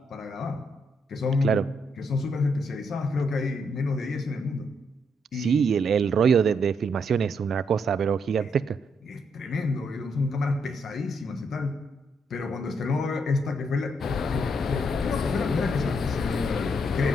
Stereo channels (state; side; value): normal; both; correlation 0.76